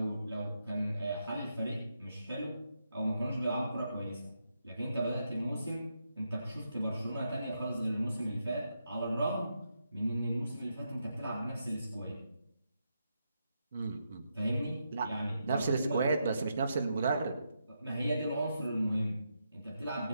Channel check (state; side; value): inverted; both; correlation -0.83